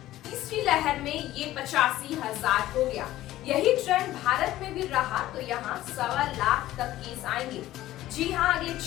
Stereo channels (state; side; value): quieter; right; 15.0 dB